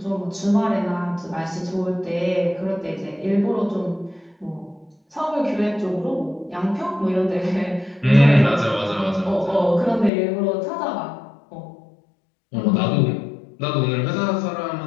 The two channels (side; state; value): right; drops out; at 10.1 s